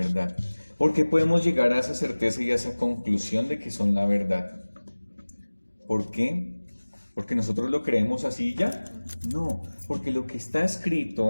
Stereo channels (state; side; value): inverted; both; correlation -1.00